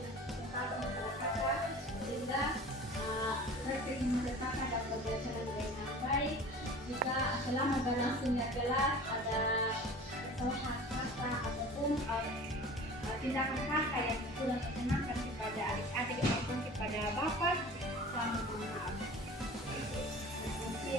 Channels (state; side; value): normal; both; correlation 0.41